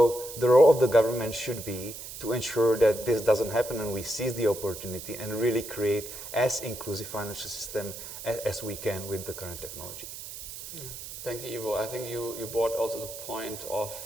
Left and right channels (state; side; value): noise; right; hiss, 11 dB below the sound